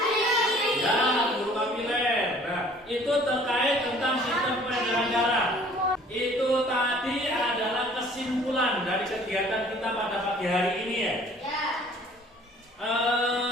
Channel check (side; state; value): both; normal; correlation 0.53